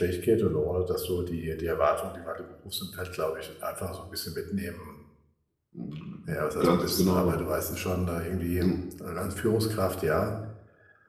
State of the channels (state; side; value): identical; both; correlation 1.00